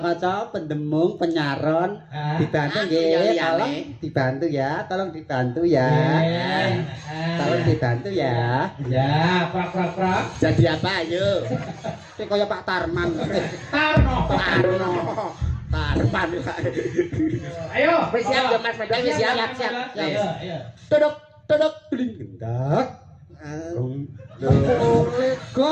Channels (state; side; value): identical; both; correlation 1.00